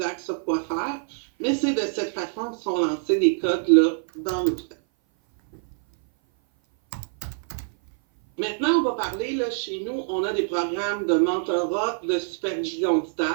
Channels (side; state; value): left; silent; 57 dB below the other